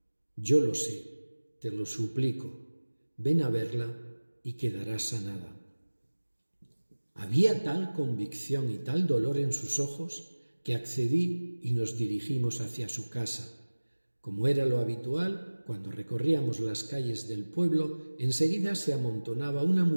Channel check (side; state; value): both; inverted; correlation -1.00